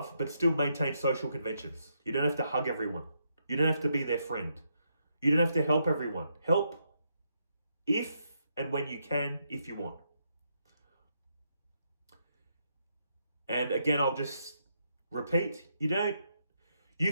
but still maintain social conventions. You don't have to hug everyone. You don't have to be their friend. You don't have to help everyone. Help if and when you can, if you want. And again, I'll just repeat,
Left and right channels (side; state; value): both; inverted; correlation -0.79